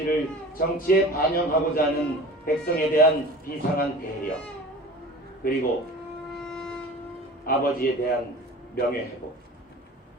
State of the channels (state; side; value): normal; both; correlation 0.39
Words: 정치에 반영하고자 하는 백성에 대한 비상한 배려, 그리고 아버지에 대한 명예회복.